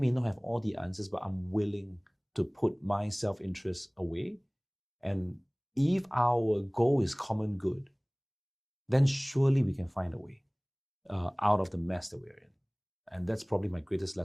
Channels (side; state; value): both; identical; correlation 1.00